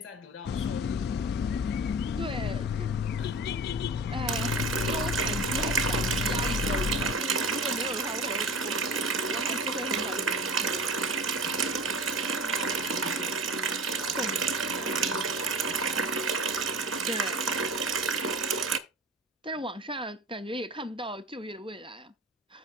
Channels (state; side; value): normal; both; correlation 0.34